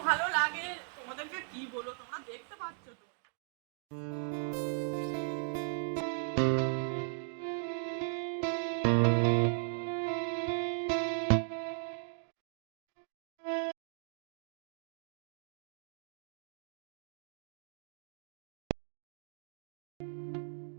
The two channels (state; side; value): silent; left; 53 dB below the other